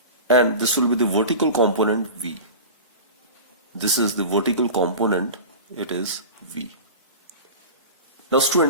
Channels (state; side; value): inverted; both; correlation -0.32